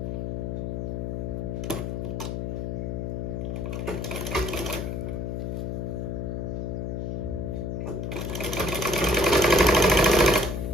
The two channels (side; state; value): left; noise; hum, 2 dB below the sound